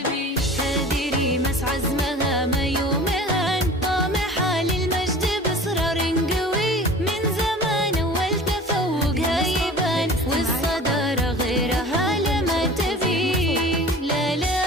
هذه ريماس عزمها ما يومها، طامحة للمجد بإصرار قوي، من زمان والتفوقها يبان، والصدارة غيرها لما تبي،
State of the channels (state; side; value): normal; both; correlation 0.40